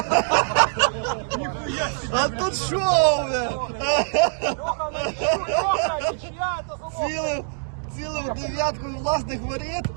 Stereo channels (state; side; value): silent; left; digital silence